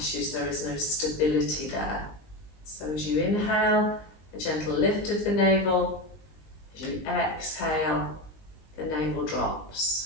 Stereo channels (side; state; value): right; late; 19 ms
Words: There is no stability there. So as you inhale, a gentle lift of the navel. As you exhale, the navel